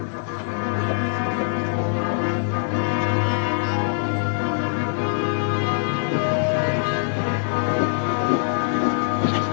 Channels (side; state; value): right; silent; digital silence